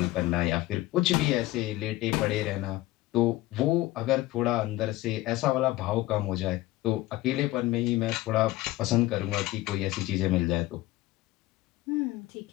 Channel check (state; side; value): quieter; right; 17.5 dB